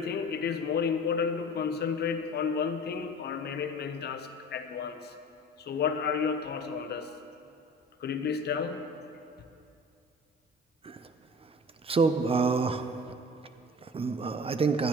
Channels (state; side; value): normal; both; correlation 0.39